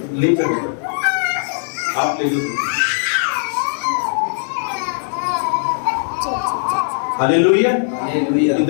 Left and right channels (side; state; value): right; silent; digital silence